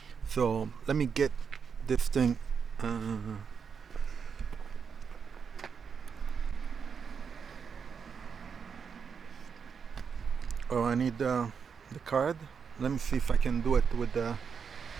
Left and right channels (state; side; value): quieter; left; 6.3 dB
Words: So let me get this thing. Oh, I need the card. Let me see if I can do it with the